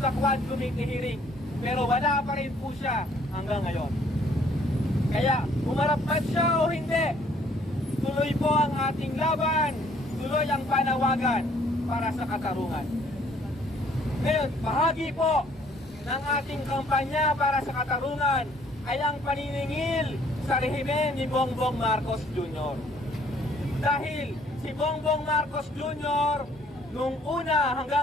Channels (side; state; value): both; normal; correlation 0.61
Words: sa Quad Committee hearing, pero wala pa rin po siya hanggang ngayon. Kaya humarap man siya o hindi, tuloy po ang ating laban, tuloy ang panawagan para sa katarungan. Ngayon, bahagi po ng ating kampanya para sa katarungan ay ang paniningil sa rehimen ni Bongbong Marcos Jr. Dahil si Bongbong Marcos Jr. nung una